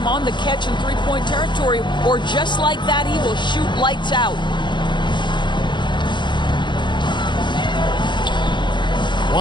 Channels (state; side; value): late; right; 0.22 ms